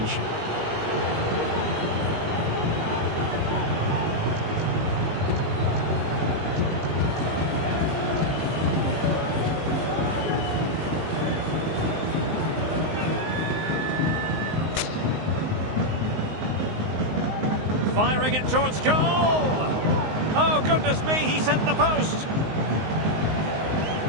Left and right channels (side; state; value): left; late; 19 ms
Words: Firing it towards goal! Oh, goodness me, he sent the post!